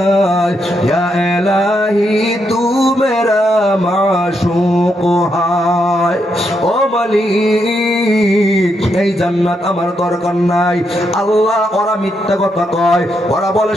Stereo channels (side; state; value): both; normal; correlation 0.80